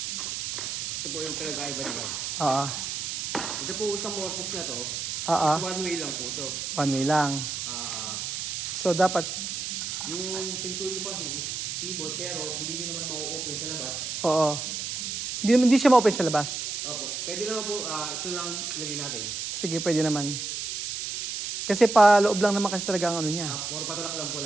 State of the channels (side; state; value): right; noise; hiss, 4 dB below the sound